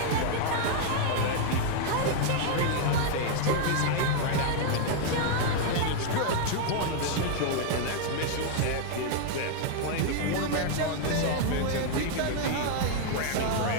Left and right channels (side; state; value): both; different; correlation 0.00